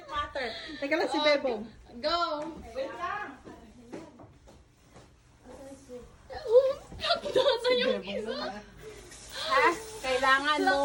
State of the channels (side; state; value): both; identical; correlation 1.00